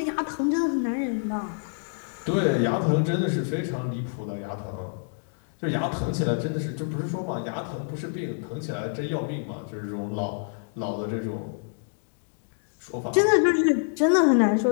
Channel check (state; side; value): silent; right; digital silence